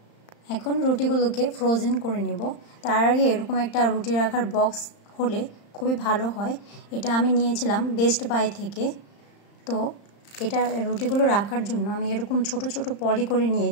এখন রুটিগুলোকে ফ্রোজেন করে নেব। তার আগে এরকম একটা রুটি রাখার বক্স হলে খুবই ভালো হয়। এটা আমি নিয়েছিলাম বেস্ট বাই থেকে। তো এটা রুটিগুলো রাখার জন্য আমি এরকম ছোট ছোট পলি করে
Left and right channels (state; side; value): late; right; 35 ms